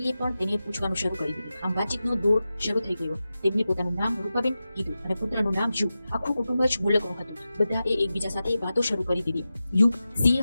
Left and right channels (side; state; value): both; inverted; correlation -0.93